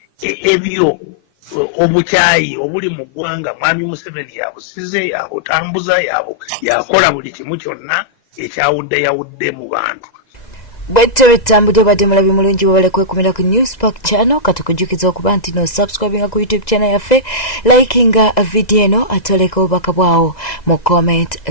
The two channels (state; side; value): late; right; 2.0 ms